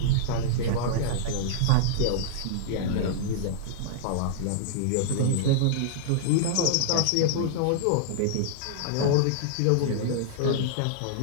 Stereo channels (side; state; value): both; different; correlation -0.02